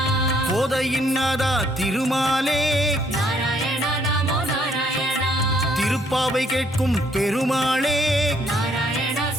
கோதையின் நாதா திருமாலே, திருப்பாவை கேட்கும் பெருமாளே,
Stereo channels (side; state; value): both; normal; correlation 0.67